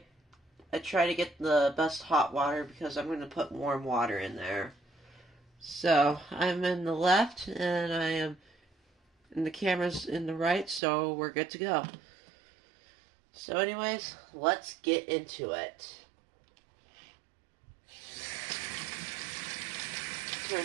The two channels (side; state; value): left; drops out; at 10.8 s